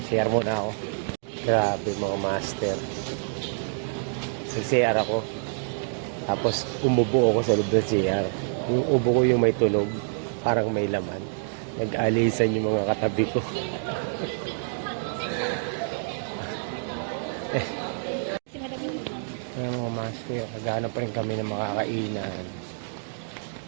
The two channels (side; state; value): left; silent; digital silence